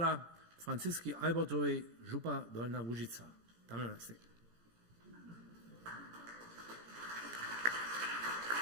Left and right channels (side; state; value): left; late; 17 ms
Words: Francisky Albertovej, župa Dolná Łužica. Tam je nás.